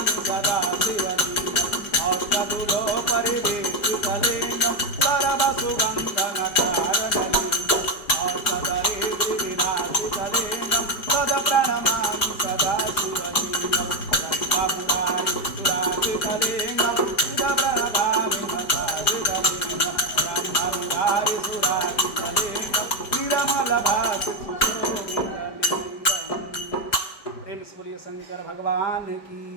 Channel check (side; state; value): right; late; 4.9 ms